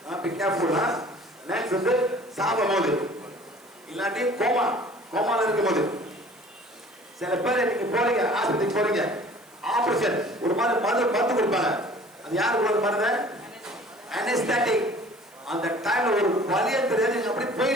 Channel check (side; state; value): right; noise; hiss, 28 dB below the sound